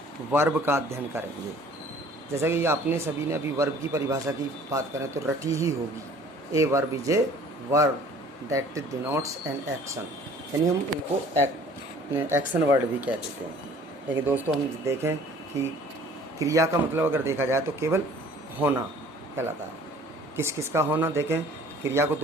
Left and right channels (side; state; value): both; normal; correlation 0.52